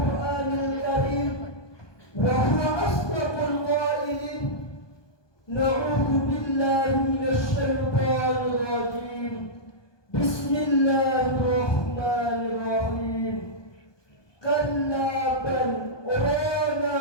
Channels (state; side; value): late; right; 1.2 ms